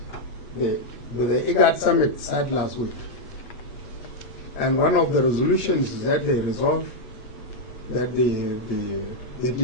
the IGAD summit sat last week. And one of the resolutions is that they resolved that the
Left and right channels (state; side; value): late; right; 8.2 ms